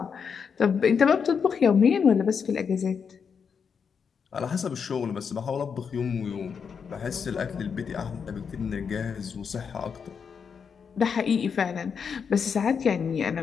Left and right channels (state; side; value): quieter; right; 6.4 dB